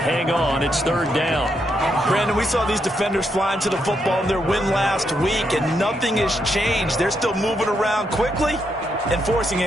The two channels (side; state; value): both; normal; correlation 0.79